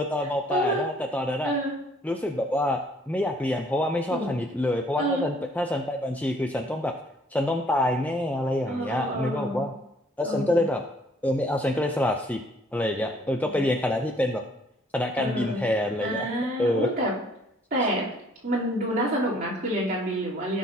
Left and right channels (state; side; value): normal; both; correlation 0.61